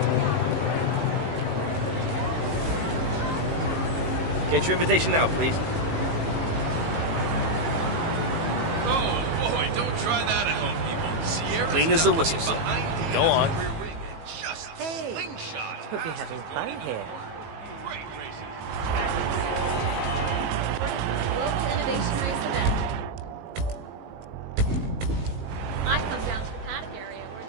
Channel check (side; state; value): left; late; 18 ms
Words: Get your invitation now, please. Oh boy, don't try that at home, people. Sierra's Clean as a whistle, son. Go on. Hey, hope you're having fun here. Global Innovation Race event. I come down to the paddock area where